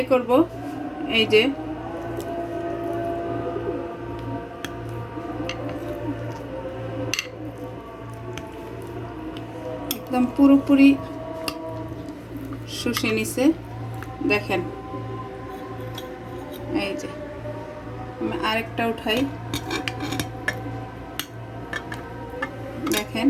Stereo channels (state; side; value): identical; both; correlation 1.00